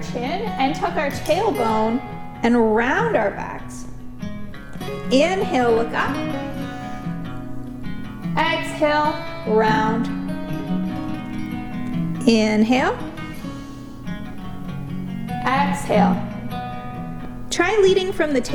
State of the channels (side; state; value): both; identical; correlation 1.00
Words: chin and tuck our tailbone and round our backs. Inhale, look up. Exhale, round. Inhale. Exhale. Try leading from the